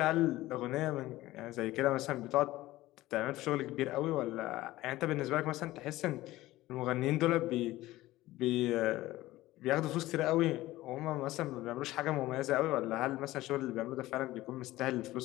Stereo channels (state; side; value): quieter; right; 17.0 dB